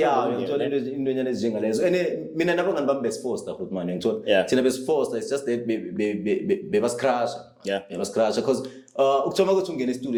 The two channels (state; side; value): identical; both; correlation 1.00